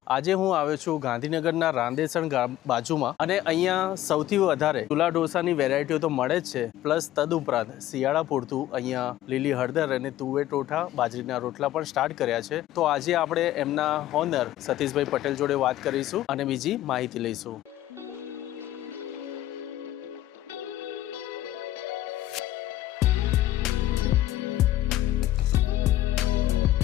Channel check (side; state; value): right; quieter; 14.1 dB